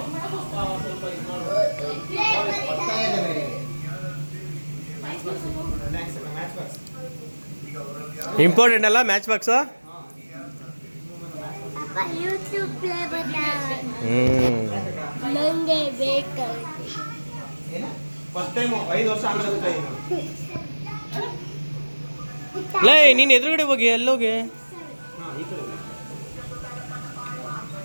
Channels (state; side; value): inverted; both; correlation -1.00